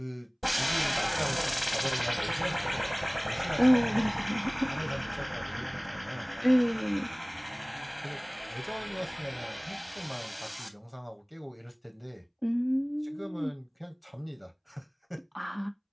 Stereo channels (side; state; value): both; identical; correlation 1.00